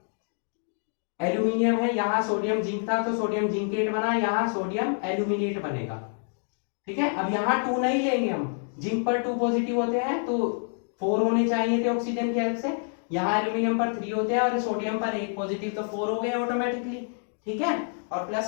एल्यूमिनियम है, यहाँ सोडियम जिंक था तो सोडियम जिंकेट बना, यहाँ सोडियम एल्यूमिनेट बनेगा। ठीक है, अब यहाँ 2 नहीं लेंगे हम, जिंक पर 2 पॉजिटिव होते हैं तो 4 होने चाहिए थे ऑक्सीजन की हेल्प से, यहाँ एल्यूमिनियम पर 3 होते हैं और सोडियम पर 1 पॉजिटिव, तो 4 हो गए ऑटोमेटिकली। ठीक है, और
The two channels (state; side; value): silent; right; 60 dB below the other